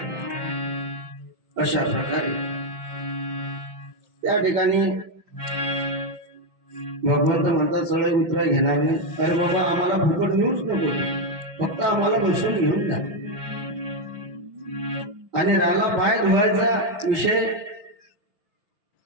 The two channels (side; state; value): left; late; 5.6 ms